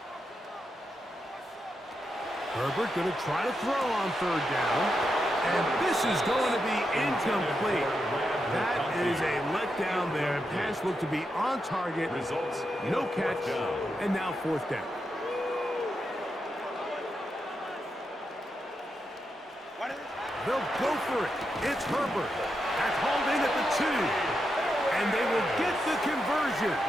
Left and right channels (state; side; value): normal; both; correlation 0.85